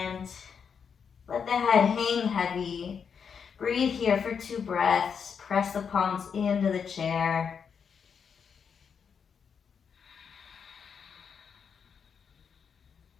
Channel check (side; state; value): right; quieter; 6.7 dB